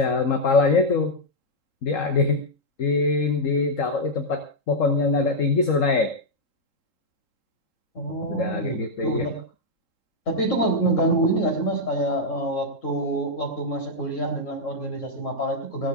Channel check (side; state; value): right; late; 3.8 ms